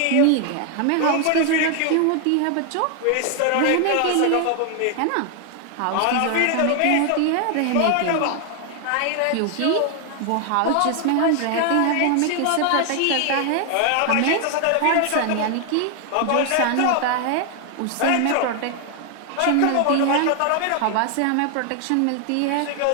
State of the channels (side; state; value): both; different; correlation 0.00